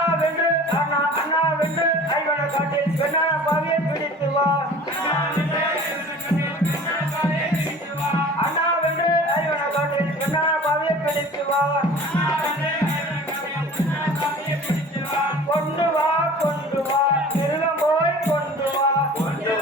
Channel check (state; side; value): normal; both; correlation 0.43